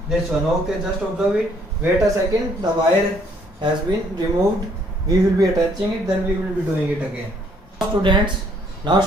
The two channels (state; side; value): normal; both; correlation 0.65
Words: this one. Okay, just observe it. Wait a second, the wire has been removed. We will be attaching it, then we will be doing it again. Now